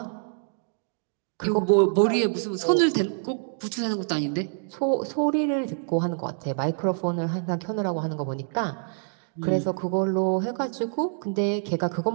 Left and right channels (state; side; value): silent; left; digital silence